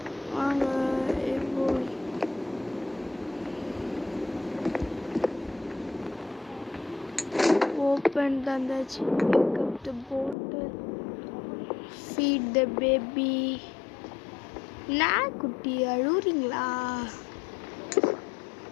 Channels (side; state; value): right; drops out; at 10.4 s